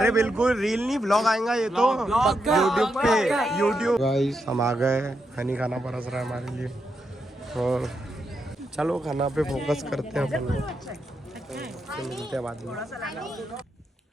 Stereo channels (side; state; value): both; normal; correlation 0.83